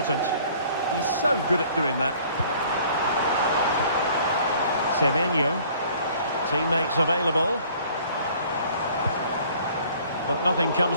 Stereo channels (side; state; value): both; inverted; correlation -0.54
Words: He's so good at doing that. Semenyo. Teammates available. But nothing